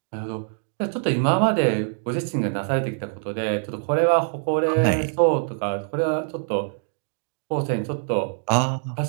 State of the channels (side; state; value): left; silent; digital silence